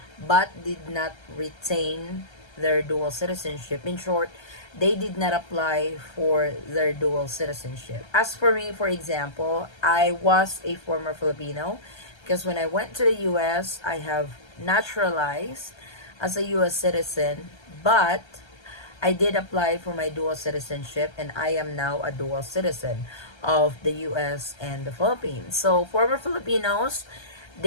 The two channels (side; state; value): right; late; 1.3 ms